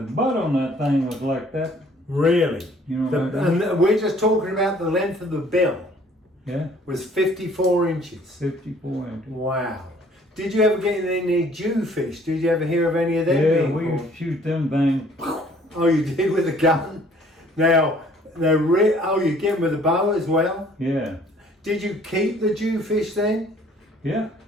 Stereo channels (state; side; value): normal; both; correlation 0.57